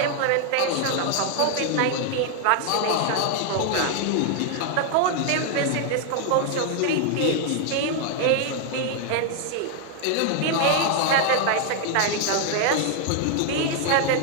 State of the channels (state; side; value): different; both; correlation 0.00